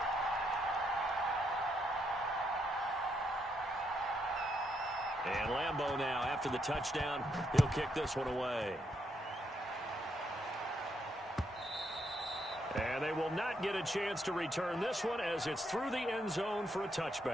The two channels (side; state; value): both; normal; correlation 0.77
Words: And Lambeau now, after the touchdown, he'll kick this one away. And they will not get a chance to return this one as it's through the end zone for a